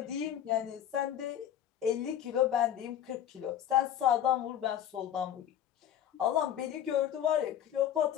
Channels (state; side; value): quieter; right; 10.4 dB